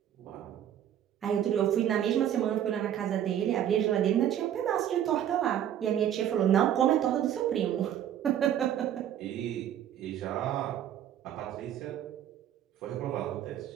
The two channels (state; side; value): quieter; left; 10.5 dB